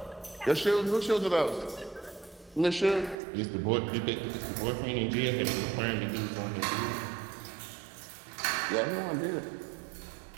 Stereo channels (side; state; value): left; drops out; at 3.2 s